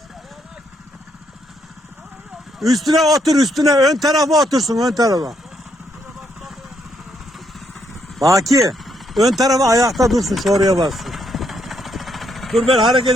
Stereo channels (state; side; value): normal; both; correlation 0.74